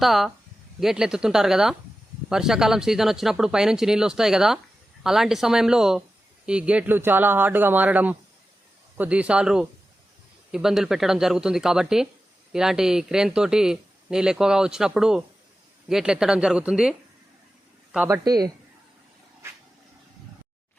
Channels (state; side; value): normal; both; correlation 0.93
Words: గేట్లు ఎత్తుతుంటారు కదా, వర్షాకాలం సీజన్ వచ్చినప్పుడు పైనుంచి నీళ్ళు వస్తాయి కదా, అలాంటి సమయంలో ఈ గేట్లు చాలా హార్డ్గా మారడం, కొద్దిసార్లు ఇబ్బందులు పెట్టడం జరుగుతుంది. కాబట్టి ఇలాంటి క్రేన్ తోటి నీళ్ళు ఎక్కువగా వచ్చినప్పుడు గేట్లు ఎత్తడం జరుగుతుంది. కాబట్టి